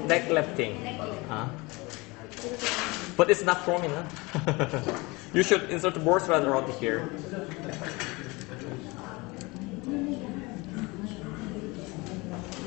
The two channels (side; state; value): right; quieter; 24.5 dB